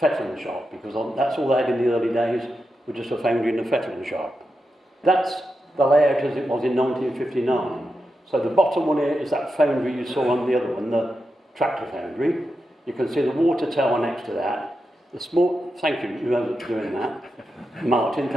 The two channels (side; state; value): both; normal; correlation 0.88